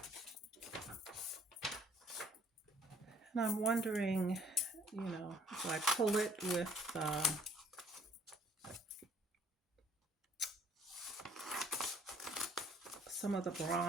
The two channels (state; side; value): normal; both; correlation 0.59